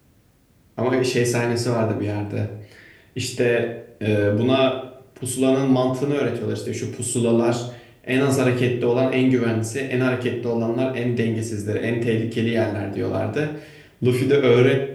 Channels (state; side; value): identical; both; correlation 1.00